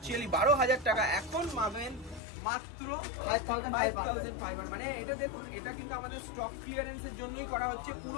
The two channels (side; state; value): right; drops out; at 2.2 s